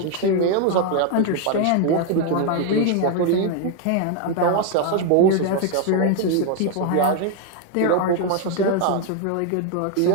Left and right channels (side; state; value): both; different; correlation 0.00